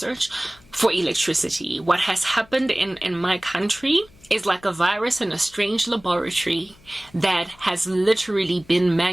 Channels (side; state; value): left; noise; hum, 27 dB below the sound